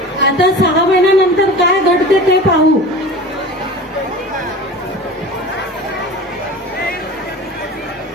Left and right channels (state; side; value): normal; both; correlation 0.36